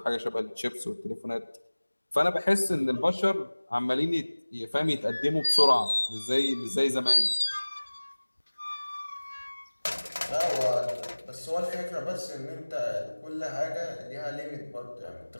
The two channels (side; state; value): both; inverted; correlation -1.00